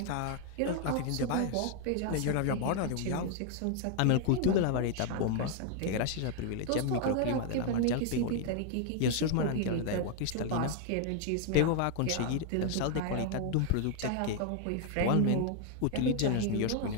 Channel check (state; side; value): different; both; correlation 0.00